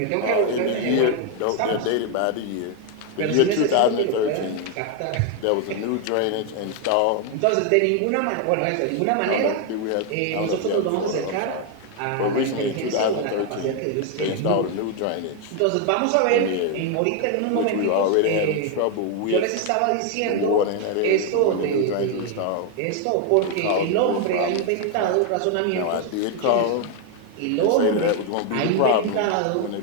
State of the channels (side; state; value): both; different; correlation 0.01